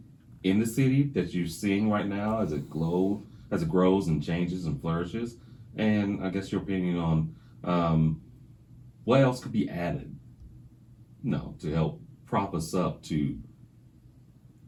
in the city that you're seeing right now as it grows and changes and flourishes? And I guess your opinion on what else could be added, to help prop us up to,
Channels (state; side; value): identical; both; correlation 1.00